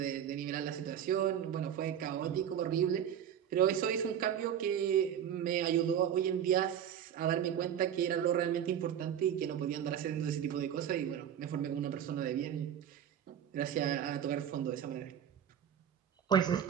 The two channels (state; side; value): quieter; left; 9.4 dB